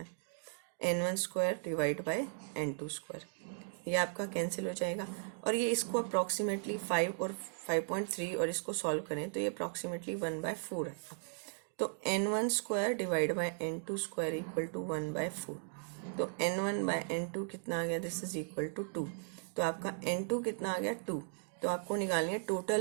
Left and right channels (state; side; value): silent; left; digital silence